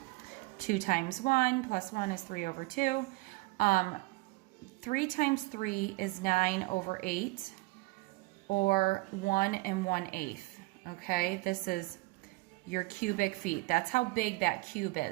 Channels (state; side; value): quieter; left; 23.2 dB